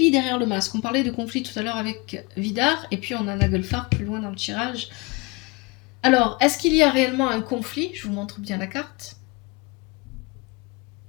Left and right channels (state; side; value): quieter; right; 26.6 dB